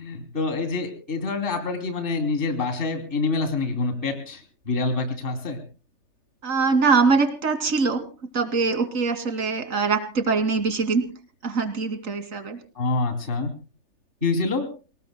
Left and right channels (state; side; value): late; left; 3.3 ms